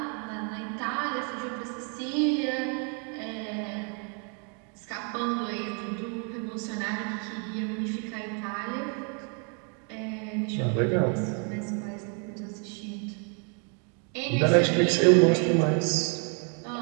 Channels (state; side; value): quieter; left; 39.3 dB